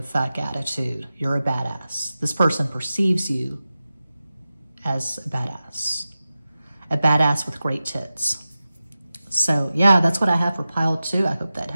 fuck attitude. You're a badass. This person perceives you as a badass with great tits. So yeah, that's what I have for pile 2. I hope that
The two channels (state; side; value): inverted; both; correlation -0.94